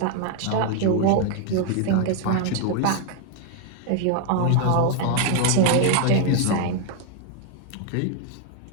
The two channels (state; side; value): different; both; correlation 0.00